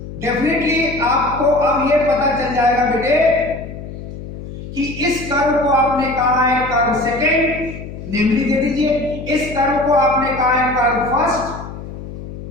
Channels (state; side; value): noise; left; hum, 11 dB below the sound